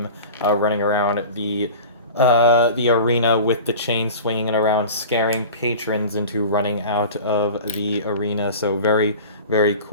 running around the arena with the chain swinging around, scaring patrons into running out of the arena. So very, very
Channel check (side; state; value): both; inverted; correlation -0.37